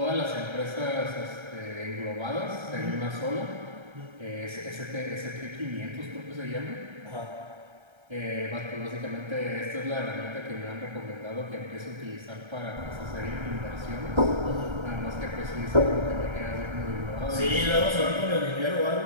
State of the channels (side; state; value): left; late; 1.3 ms